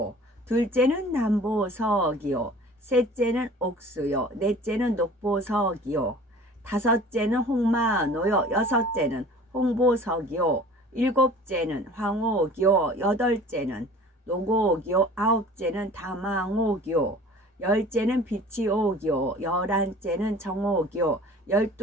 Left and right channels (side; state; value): both; normal; correlation 0.46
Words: 둘째는 남보석이요, 셋째는 옥수요, 넷째는 녹보석이요, 다섯째는 홍마노요, 여섯째는 홍보석이요, 일곱째는 황옥이요, 여덟째는 노곡이요, 아홉째는 다망옥이요, 열째는 비치옥이요, 열한째는 정옥이요,